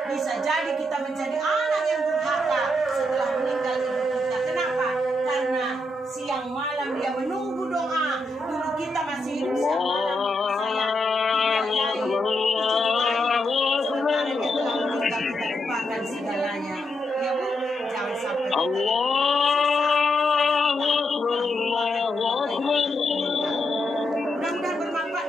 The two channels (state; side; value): normal; both; correlation 0.81